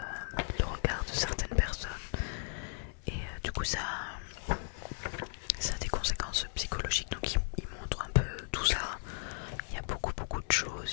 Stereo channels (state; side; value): silent; right; 54 dB below the other